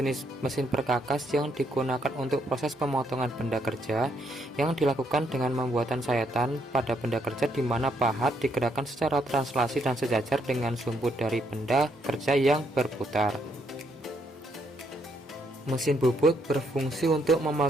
mesin perkakas yang digunakan untuk proses pemotongan benda kerja yang dilakukan dengan pembuatan sayatan pada benda kerja, di mana pahat digerakkan secara translasi dan sejajar dengan sumbu dari benda kerja yang berputar. Mesin bubut berfungsi untuk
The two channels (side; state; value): both; normal; correlation 0.74